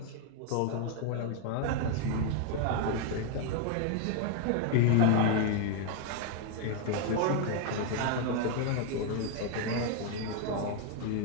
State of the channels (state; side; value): different; both; correlation 0.00